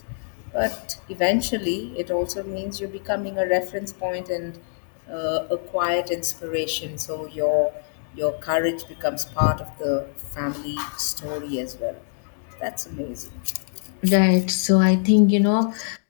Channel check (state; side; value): silent; right; digital silence